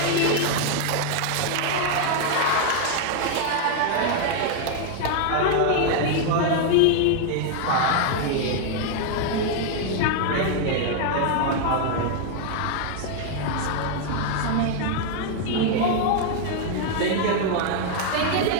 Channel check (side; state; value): both; different; correlation 0.00